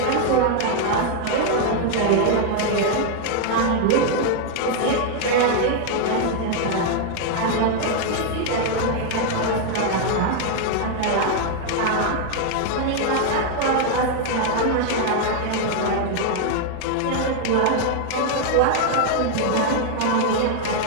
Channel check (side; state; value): both; different; correlation 0.00